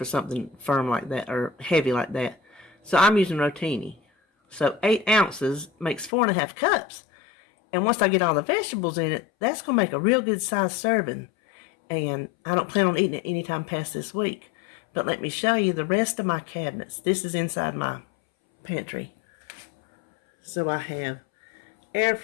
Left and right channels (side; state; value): right; drops out; at 6.1 s